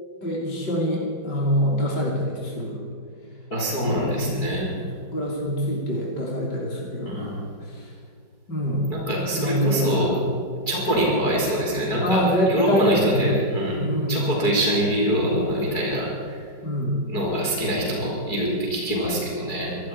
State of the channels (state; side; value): late; right; 4.6 ms